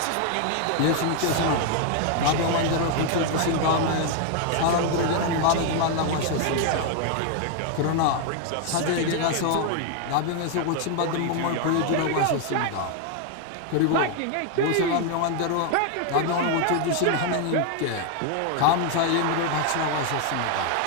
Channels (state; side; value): different; both; correlation 0.01